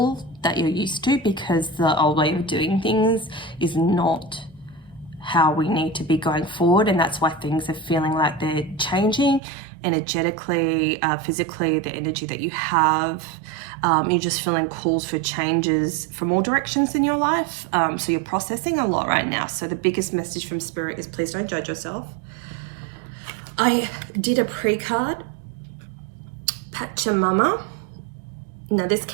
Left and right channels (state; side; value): drops out; left; at 9.4 s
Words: that you're used to, because the old way of doing things is not how we need to be going forward, and that's why things are feeling like they're changing energetically, physically, the energy that you have. You're just feeling calls for changes from all directions in your life, so you're processing a lot right now. So the biggest message from Spirit is please don't judge yourself. I did a pre-card, Pachamama. Now this